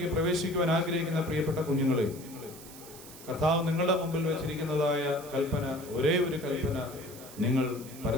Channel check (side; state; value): right; noise; hiss, 17 dB below the sound